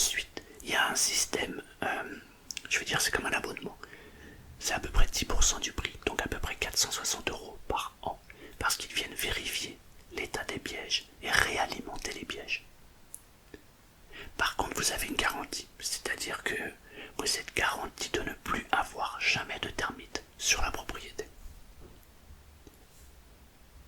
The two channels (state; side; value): identical; both; correlation 1.00